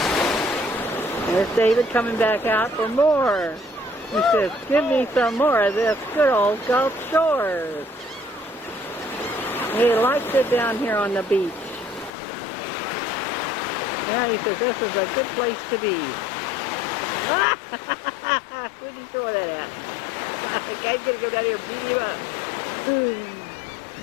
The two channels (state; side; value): drops out; right; at 12.1 s